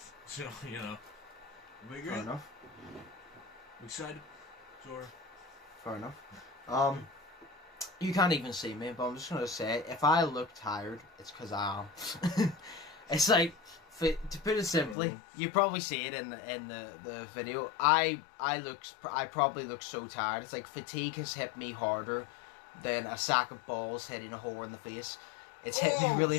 So, you know, we good? Fair enough. We excited? Sure. Fair enough. You can't even see me, but I'm just gonna say, if I look tired, it's because I am. It's like, to put it simply, you probably see it in the video. I probably look so tired. It's like fatigue has hit me harder than a sack of balls hitting a whore in the face. It's hit me really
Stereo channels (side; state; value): right; drops out; at 15.0 s